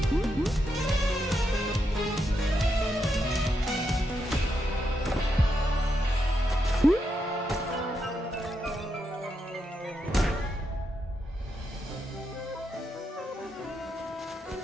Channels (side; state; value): both; normal; correlation 0.82